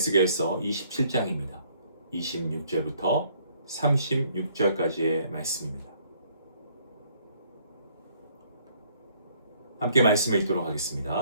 27장입니다. 26절부터 36절까지의 말씀입니다. 함께 말씀을 읽도록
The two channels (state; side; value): inverted; both; correlation -0.64